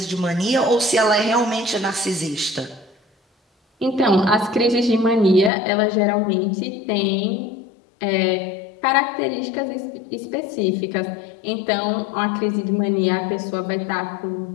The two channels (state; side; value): drops out; right; at 5.5 s